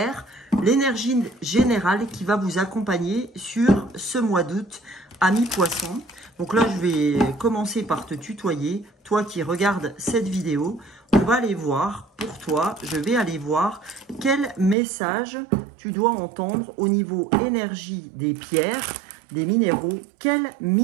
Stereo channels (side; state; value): left; drops out; at 14.8 s